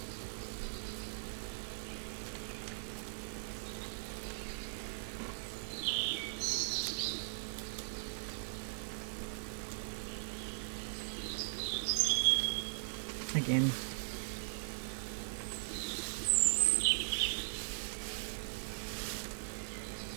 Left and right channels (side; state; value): left; silent; 51 dB below the other